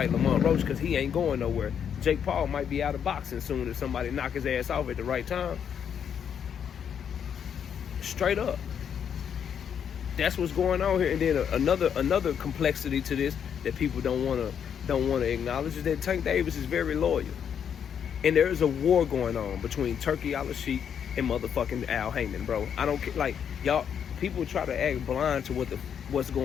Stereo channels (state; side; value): quieter; right; 8.1 dB